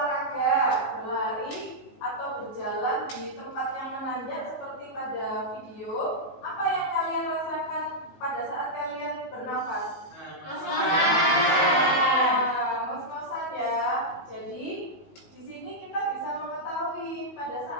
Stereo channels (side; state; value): right; late; 19 ms